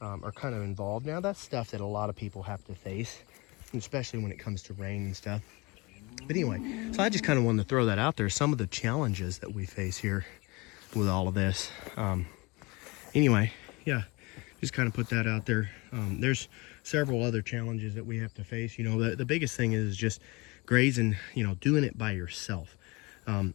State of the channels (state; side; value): quieter; right; 25.5 dB